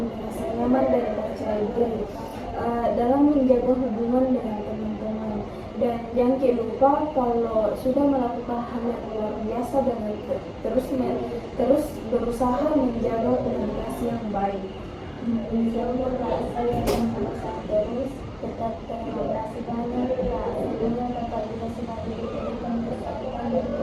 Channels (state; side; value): identical; both; correlation 1.00